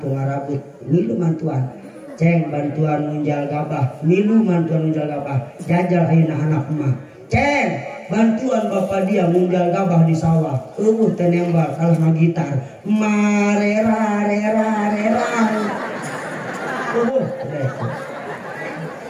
tu ngarabut ngilu mantuan ceng bantuan munjal gabah milu bantuan munjal gabah jajal ayeuna anak emak ceng bantuan bapak dia munjal gabah di sawah teh nembal kalah magitar marera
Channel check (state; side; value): identical; both; correlation 1.00